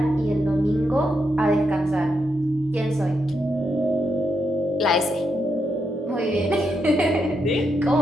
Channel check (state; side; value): normal; both; correlation 0.82